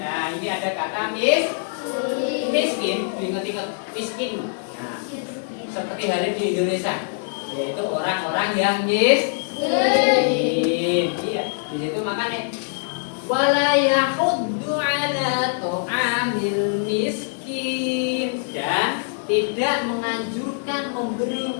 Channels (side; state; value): right; silent; digital silence